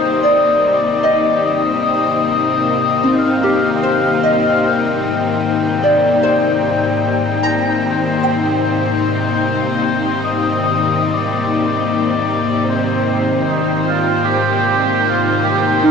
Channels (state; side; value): normal; both; correlation 0.58